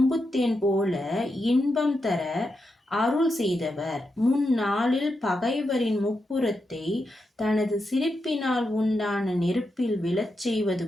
போல இன்பம் தர அருள் செய்தவர். முன்னாளில் பகைவரின் முப்புறத்தை தனது சிரிப்பினால் உண்டான நெருப்பில் விழச் செய்வது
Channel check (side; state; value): both; normal; correlation 0.86